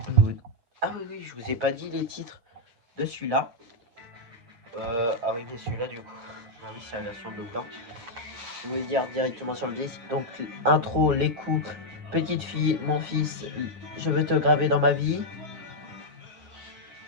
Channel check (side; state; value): left; late; 8.7 ms